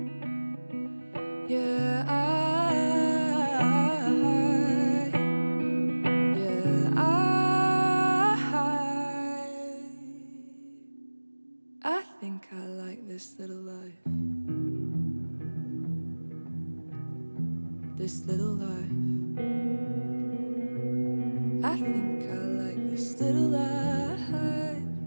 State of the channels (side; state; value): both; inverted; correlation -1.00